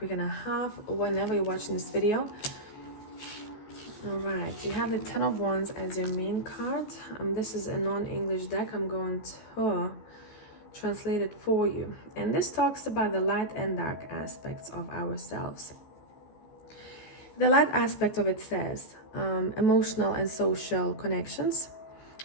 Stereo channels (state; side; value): late; right; 14 ms